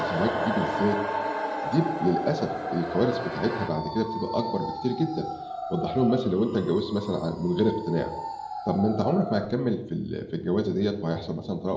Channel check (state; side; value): identical; both; correlation 1.00